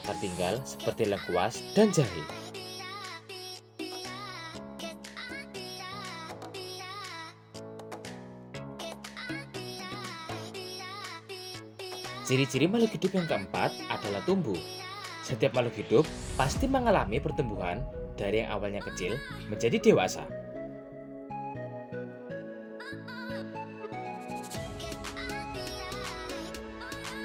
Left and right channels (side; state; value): both; identical; correlation 1.00